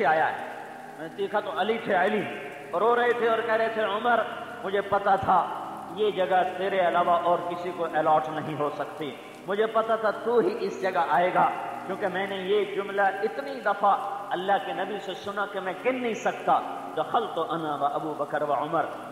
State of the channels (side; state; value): both; identical; correlation 1.00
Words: آیا ہے، میں نے دیکھا تو علی تھے، علی رو رہے تھے اور کہہ رہے تھے عمر مجھے پتا تھا یہ جگہ تیرے علاوہ اور کسی کو الاٹ نہیں ہو سکتی، مجھے پتا تھا تو ہی اس جگہ آئے گا، کیونکہ میں نے یہ جملہ اتنی دفعہ اللہ کے نبی سے سنا کہ میں گن نہیں سکتا، دخلت انا و ابو بکر و عمر